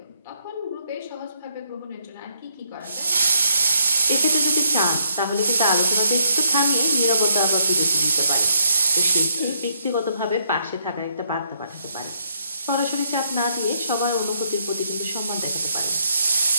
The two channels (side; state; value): both; inverted; correlation -0.74